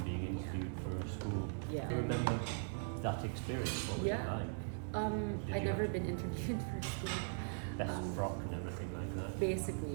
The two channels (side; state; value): left; silent; digital silence